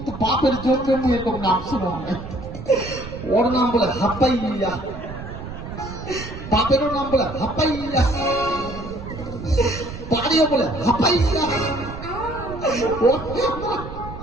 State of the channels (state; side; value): noise; right; rumble, 11 dB below the sound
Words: তো বাপের জন্য এরকম নাম শুনো ওর নাম বলে হাপ্পাইয়া বাপেরও নাম বলে হাপ্পাইয়া বাড়িও বলে হাপ্পাইয়া